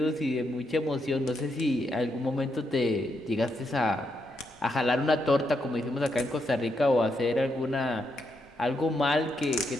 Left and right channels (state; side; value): normal; both; correlation 0.80